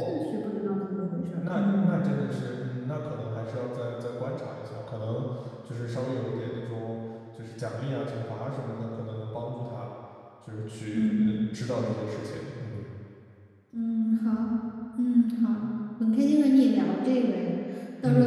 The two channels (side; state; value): both; identical; correlation 1.00